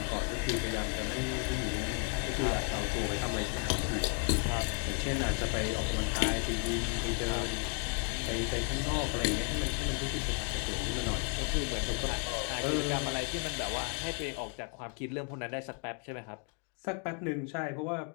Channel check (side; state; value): right; quieter; 39.3 dB